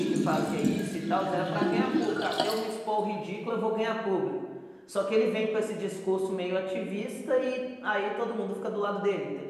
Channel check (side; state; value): both; identical; correlation 1.00